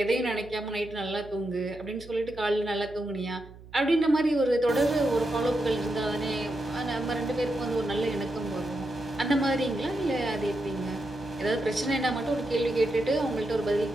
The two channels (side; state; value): right; noise; hum, 19 dB below the sound